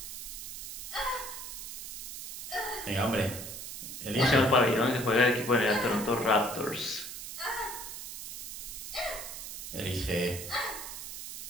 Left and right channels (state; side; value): noise; right; hiss, 8 dB below the sound